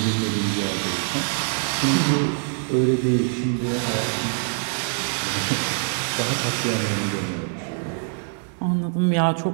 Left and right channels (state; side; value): silent; left; 62 dB below the other